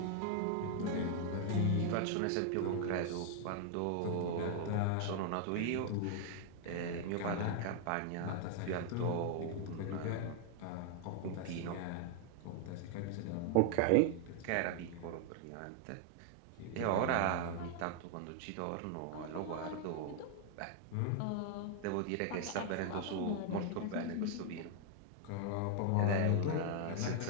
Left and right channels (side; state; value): both; different; correlation 0.00